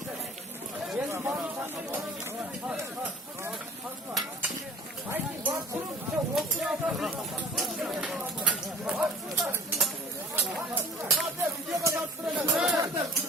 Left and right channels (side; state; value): both; normal; correlation 0.45